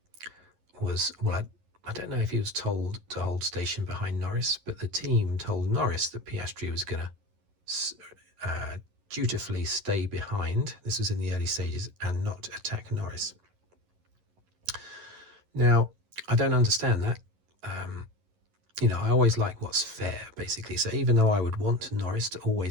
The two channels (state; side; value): late; left; 11 ms